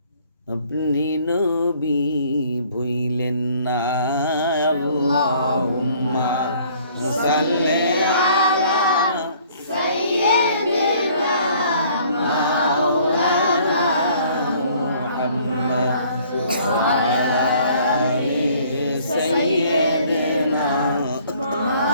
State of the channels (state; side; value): inverted; both; correlation -0.57